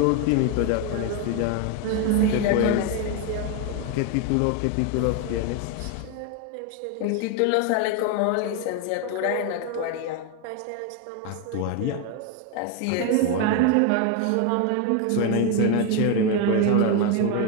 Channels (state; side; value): different; both; correlation 0.01